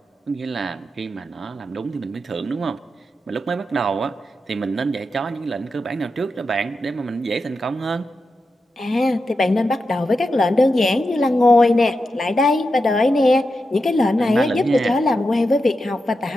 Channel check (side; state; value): both; normal; correlation 0.88